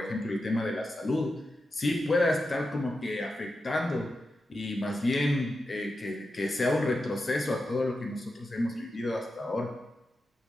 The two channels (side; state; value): both; normal; correlation 0.89